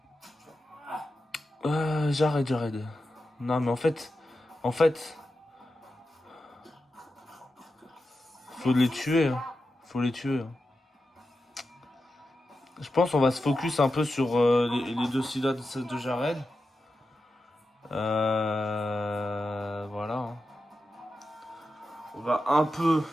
Jared. Non, mais en fait... Faut les tuer. Hein. Faut les tuer. Hein. Je pense qu'on va se focus un peu sur les deux sida de Jared. Voilà. Hein. On va un peu...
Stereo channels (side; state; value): both; normal; correlation 0.90